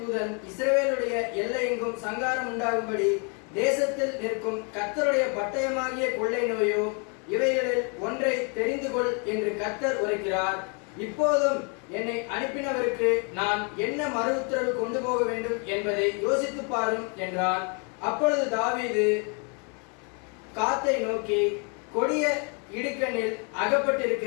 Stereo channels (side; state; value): right; quieter; 36.5 dB